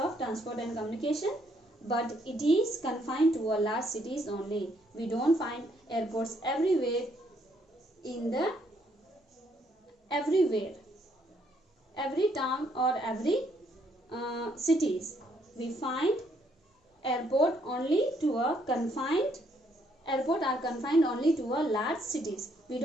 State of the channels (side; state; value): both; normal; correlation 0.70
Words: transport and communication, but it is confined to a large cities only. We don't find airports everywhere every town or every cities. We find airport are confined only to a large cities. We